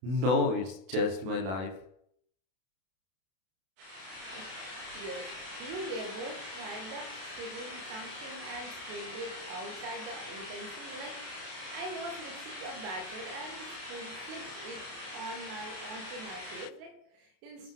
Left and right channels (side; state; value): left; late; 32 ms